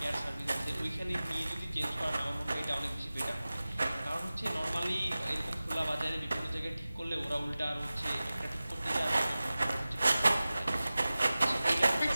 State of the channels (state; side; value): inverted; both; correlation -0.97